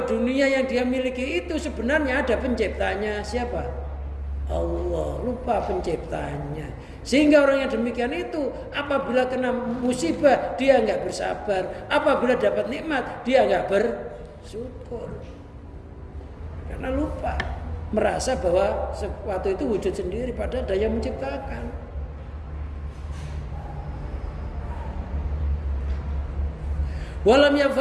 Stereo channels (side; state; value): both; identical; correlation 1.00